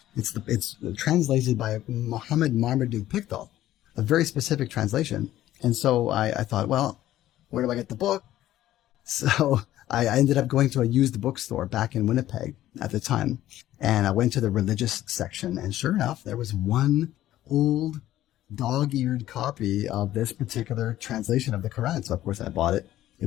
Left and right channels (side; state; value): right; quieter; 13.8 dB